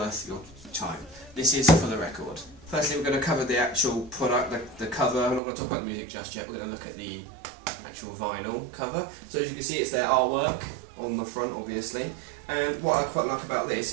your time. This is for the record. Firstly, we're going to cover the actual product, the cover. I'm not going to talk about the music just yet, we're going to look at the actual vinyl cover. So as you can see, it's their artwork on the front, obviously. And what I quite like about this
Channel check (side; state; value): left; drops out; at 5.4 s